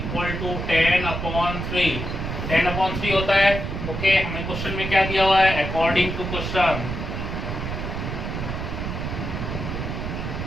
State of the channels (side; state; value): right; noise; rumble, 4 dB below the sound